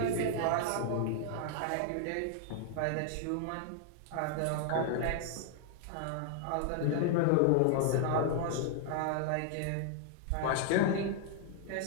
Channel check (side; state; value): both; different; correlation 0.00